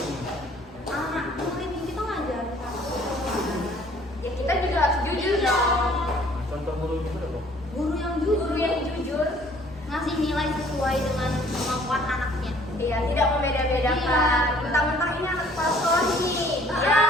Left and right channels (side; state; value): both; normal; correlation 0.57